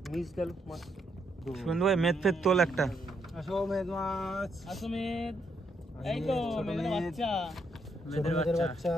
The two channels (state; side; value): normal; both; correlation 0.76